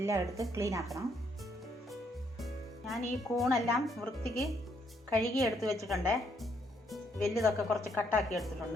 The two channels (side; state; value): both; normal; correlation 0.72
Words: എടുത്ത് ക്ലീൻ ആക്കണം. ഞാൻ ഈ കൂണെല്ലാം വൃത്തിക്ക് കഴുകി എടുത്ത് വെച്ചിട്ടുണ്ട്. വലുതൊക്കെ കുറച്ച് കട്ടാക്കി